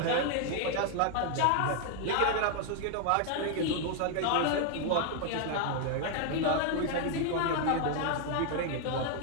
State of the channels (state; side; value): different; both; correlation 0.00